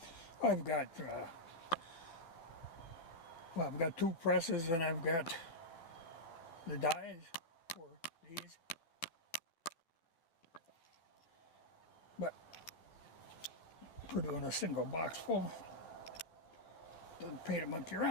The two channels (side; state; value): right; late; 12 ms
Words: I've got, I've got 2 presses and I've got the dies for these. But for doing a single box full, doesn't pay to monkey